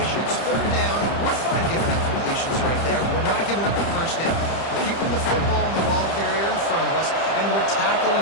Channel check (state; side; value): late; right; 30 ms